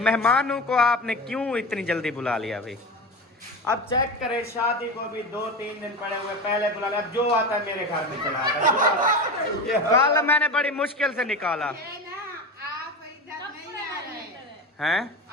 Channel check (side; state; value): both; normal; correlation 0.25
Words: को आपने क्यों इतनी जल्दी बुला लिया भाई? अब चेक करें, शादी को भी 2-3 दिन पड़े हुए, पहले बुला लिया, अब जो आता है मेरे घर में चला आता है। कल मैंने बड़ी मुश्किल से निकाला। आप इधर नहीं आ रहे हैं?